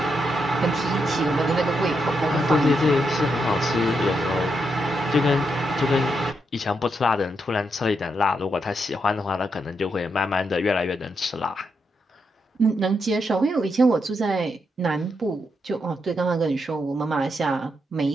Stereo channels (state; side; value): normal; both; correlation 0.82